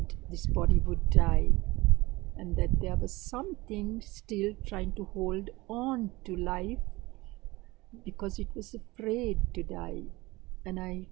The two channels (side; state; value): left; quieter; 21.2 dB